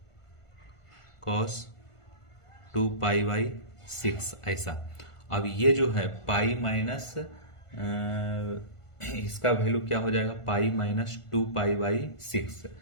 कॉस 2 पाई/6, ऐसा। अब ये जो है पाई माइनस इसका वैल्यू क्या हो जाएगा? पाई माइनस 2 पाई/6।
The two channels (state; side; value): late; right; 1.5 ms